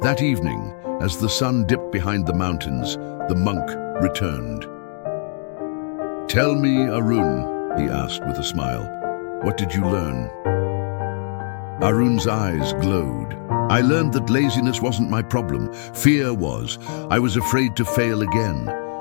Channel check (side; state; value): right; silent; 65 dB below the other